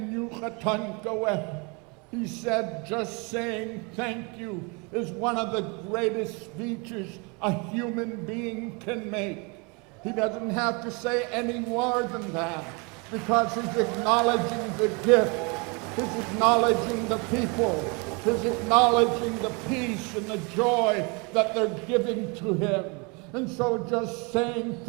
yuchatankawe." He said, just saying thank you is one of the greatest speeches a human being can make. He doesn't have to say any more than that because he's acknowledging the gift, he's acknowledging the people, he's acknowledging the peace and the joy that they're giving to him. And so just saying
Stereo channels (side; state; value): left; quieter; 30.9 dB